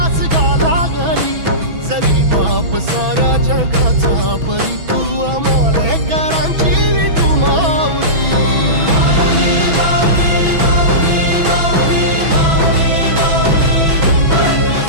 गा लागली जरी बाप साऱ्या जगाचा परी तू आमालेकरांची विठू माऊली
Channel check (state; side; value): late; left; 6.1 ms